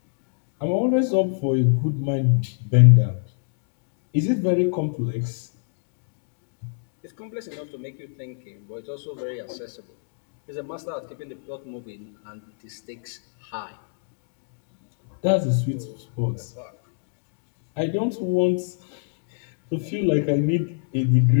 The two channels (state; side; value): silent; right; digital silence